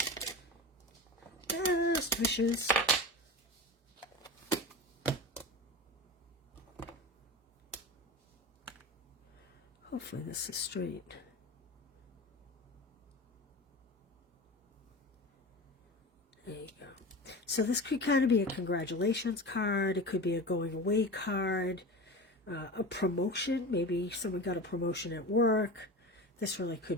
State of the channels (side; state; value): both; normal; correlation 0.29